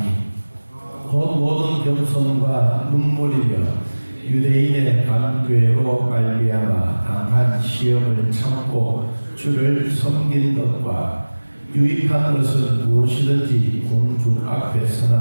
곧 모든 겸손과 눈물이며 유대인의 간괴로 말미암아 당한 시험을 참고 주를 섬긴 것과 유익한 것은 무엇이든지 공중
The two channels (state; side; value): inverted; both; correlation -1.00